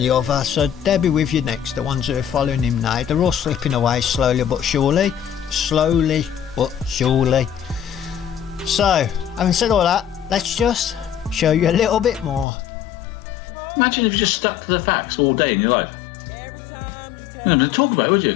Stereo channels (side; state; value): right; drops out; at 12.5 s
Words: other, so they'll be with you next. The ones who are following him now, they're all slipping away slowly but surely. Slowly but surely. So, having said all that, let's just show you a little bit more. Imagine if you just stuck to the facts all day in your life. You know, talk about it, would